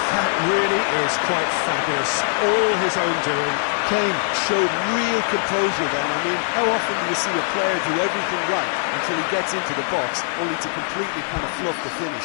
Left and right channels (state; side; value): silent; right; digital silence